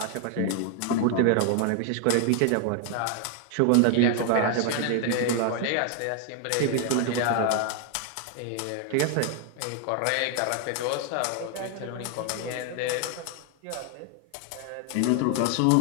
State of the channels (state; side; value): different; both; correlation 0.00